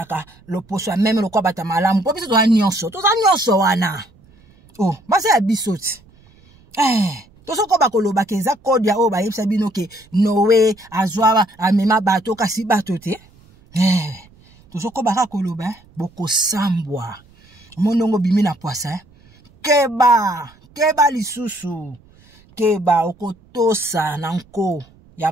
loposo même lokwa bata malamu po biso to nyonso wana basa ya biso ti tosoko bakoloba ke eza code ya o ba yebisa bino ke Noé azwa amema bato kasi bato te tosoko baka koloba bokosambwa monongo bimi na poisa keba lisusu keba okotosa na nko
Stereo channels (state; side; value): noise; right; rumble, 29 dB below the sound